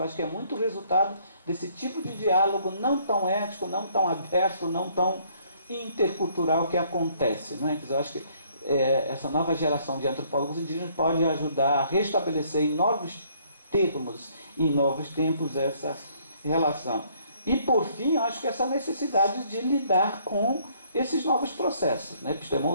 acho que é muito resultado desse tipo de diálogo não tão ético, não tão aberto, não tão intercultural que acontece. Não é? Quer dizer, eu acho que essa nova geração de antropólogos indígenas pode ajudar a restabelecer em novos termos, em novos tempos, essa relação. E, por fim, eu acho que essa necessidade de lidar com esses novos processos, né,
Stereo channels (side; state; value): both; inverted; correlation -0.64